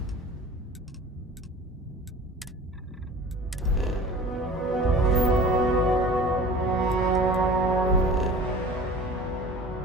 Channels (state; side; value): normal; both; correlation 0.41